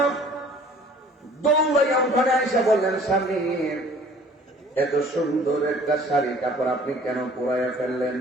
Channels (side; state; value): both; normal; correlation 0.52